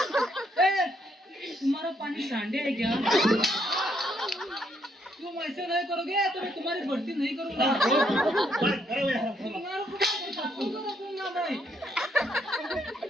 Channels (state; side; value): normal; both; correlation 0.73